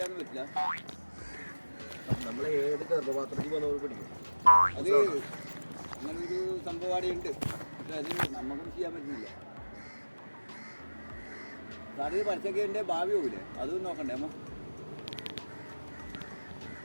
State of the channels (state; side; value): inverted; both; correlation -1.00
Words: പറ്റില്ല. നമ്മൾ ഏത് ഗർഭപാത്രത്തിൽ വന്നവർ പിടിക്കും. അത് അങ്ങനൊരു സംഭവം ഉണ്ട്. പക്ഷെ അത് നമുക്കൊന്നും ചെയ്യാൻ പറ്റുന്നില്ല. സാറിന് പറിച്ചൊക്കെ എൻ്റെ ഭാവി പോകില്ലേ? അതും നോക്കണ്ടേ അമ്മ?